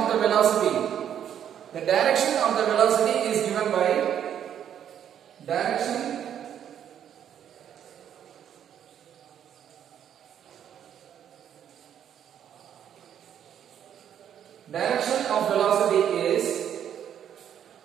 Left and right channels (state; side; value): quieter; left; 9.5 dB